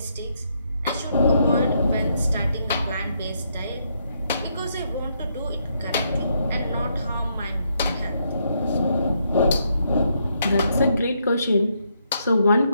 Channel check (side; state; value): both; inverted; correlation -0.76